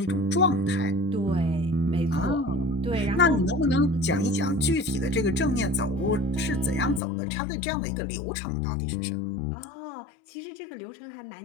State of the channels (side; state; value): right; drops out; at 7.0 s